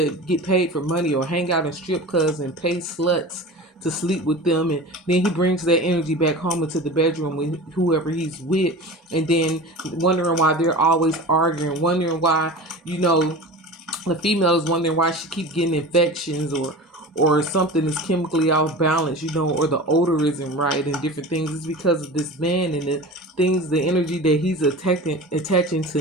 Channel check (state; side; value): normal; both; correlation 0.33